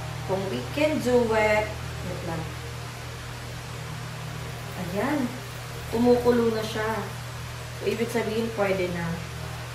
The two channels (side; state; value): both; identical; correlation 1.00